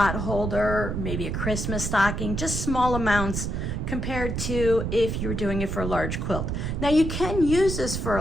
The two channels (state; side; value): noise; right; rumble, 3 dB below the sound